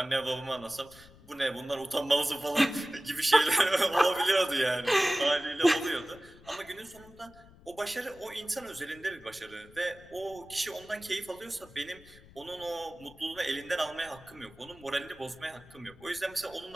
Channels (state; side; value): noise; left; rumble, 23 dB below the sound